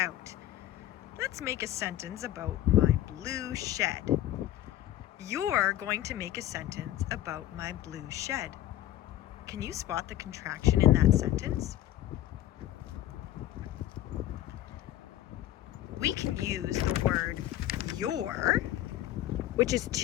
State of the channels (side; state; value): right; quieter; 13.7 dB